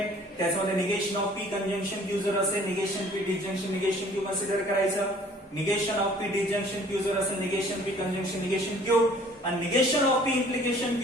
त्याच्यामध्ये negation of P conjunction Q जर असेल, negation P disjunction negation Q consider करायचं. Negation of P disjunction Q जर असेल, negation P conjunction negation Q. आणि negation of P implication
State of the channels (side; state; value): both; normal; correlation 0.54